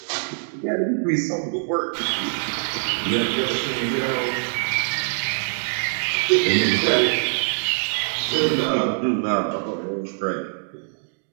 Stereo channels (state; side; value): silent; left; digital silence